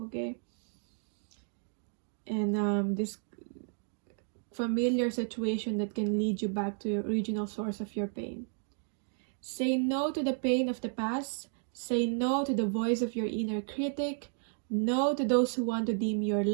okay? And this familiar situation that can lead you back to your original source of your pain. Say no to the pain of the past. Say no to the voice of your inner critic. No to those who want to dim your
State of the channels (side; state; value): left; silent; 56 dB below the other